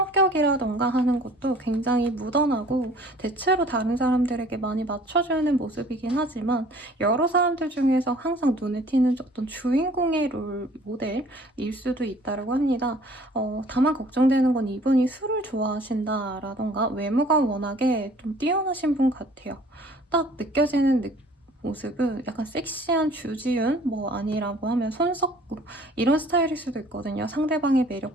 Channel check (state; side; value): normal; both; correlation 0.53